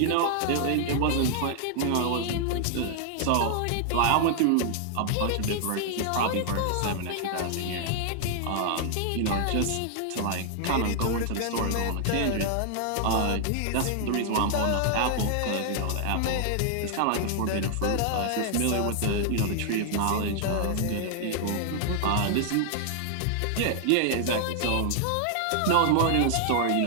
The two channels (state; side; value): different; both; correlation 0.00